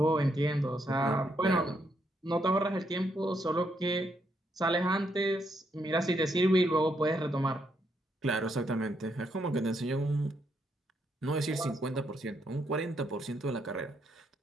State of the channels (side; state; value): both; normal; correlation 0.76